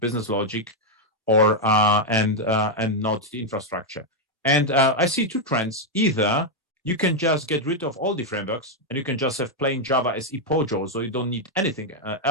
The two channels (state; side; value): normal; both; correlation 0.00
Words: logic, or and not the infrastructure. And I see two trends. Either you can just get rid of all the frameworks and you can just have plain Java SE Pojo, so you don't need anything